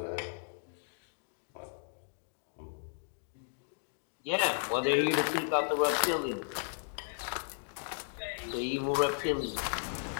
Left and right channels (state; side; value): silent; right; digital silence